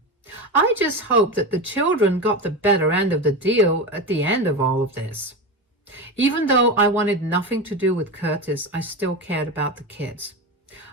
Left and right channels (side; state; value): both; normal; correlation 0.20